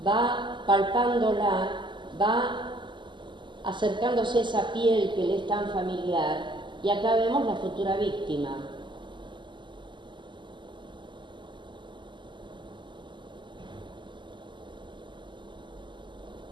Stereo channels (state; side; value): late; left; 0.23 ms